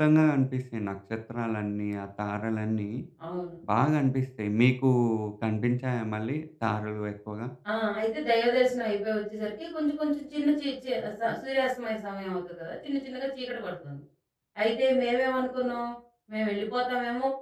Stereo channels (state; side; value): identical; both; correlation 1.00